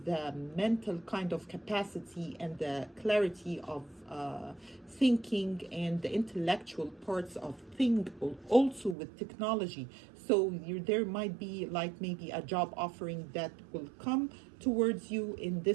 the mental kind of capacity and the clarity of thinking and the intellectual parts of thing, also with technology. So there might be like maybe a job offering that will come towards you in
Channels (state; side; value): drops out; left; at 9.0 s